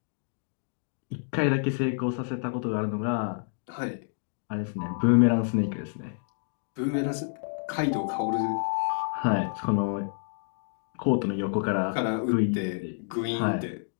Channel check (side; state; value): right; silent; digital silence